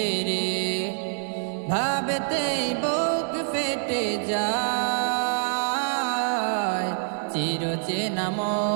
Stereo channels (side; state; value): left; silent; digital silence